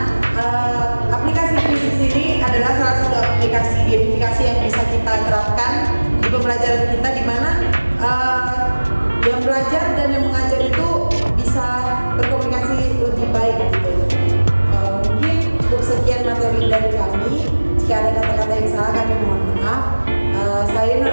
aplikasi kuisis ini adalah salah satu aplikasi gamifikasi yang bisa kita terapkan di pembelajaran kita, di mana yang belajar dan yang mengajar itu bisa berkomunikasi lebih baik gitu. Mungkin untuk sekian materi dari kami, jika ada kata-kata yang salah kami mohon maaf. Saya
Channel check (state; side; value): inverted; both; correlation -1.00